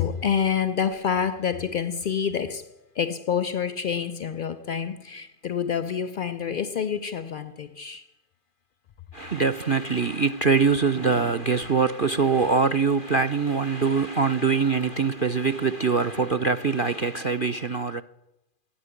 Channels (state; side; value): late; right; 2.4 ms